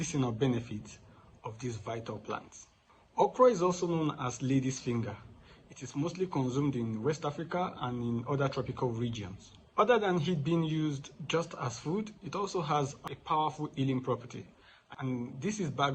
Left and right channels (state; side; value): identical; both; correlation 1.00